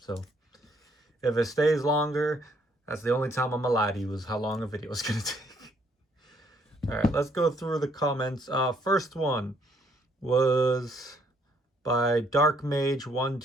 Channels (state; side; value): normal; both; correlation 0.67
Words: if it stays longer, that's the only time I'm gonna lie to you, is how long a video is gonna take. All right, let's go through the comments. First one was by Dark Mage